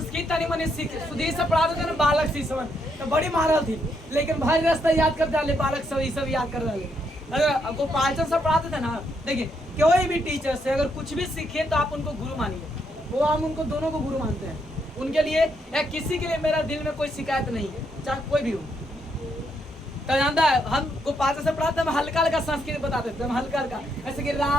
नहीं मने सीखे, सुधीर से पढ़ाते थे ना बालक सी समझ, तो बड़ी महारत थी, लेकिन भारी रास्ता याद कर डाले, बालक सब ये सब याद कर डाले। अगर गोपालचंद से पढ़ाते थे ना, देखिए कोई भी टीचर से अगर कुछ भी सीखे तो आप उनको गुरु मानिए, वो हम उनको दोनों को गुरु मानते हैं। उनके लिए या किसी के लिए मेरा दिल में कोई शिकायत नहीं है, चाहे कोई भी हो। तो जानता है हम गोपाल से पढ़ाते हम हल्का हल्का संस्कृत बताते थे, हम हल्का हल्का, ऐसे कि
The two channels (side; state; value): both; normal; correlation 0.77